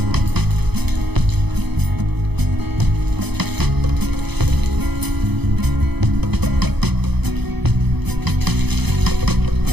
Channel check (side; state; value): left; late; 0.98 ms